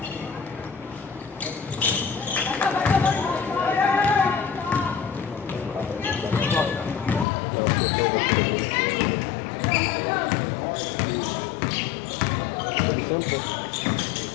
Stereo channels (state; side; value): drops out; right; at 7.2 s